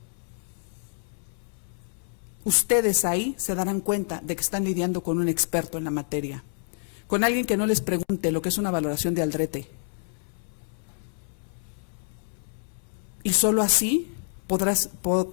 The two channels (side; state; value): right; silent; 60 dB below the other